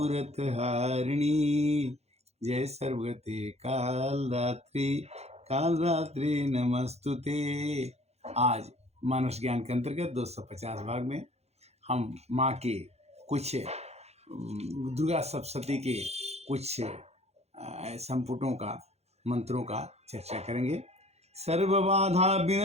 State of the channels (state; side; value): late; left; 0.31 ms